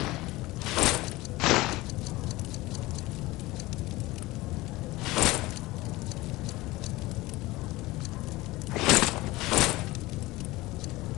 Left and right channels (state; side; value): quieter; right; 19.8 dB